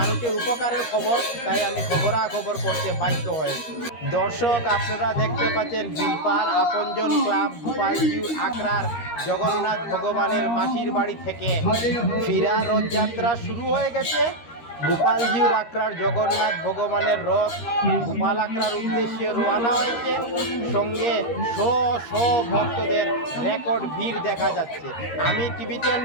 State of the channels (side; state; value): right; late; 13 ms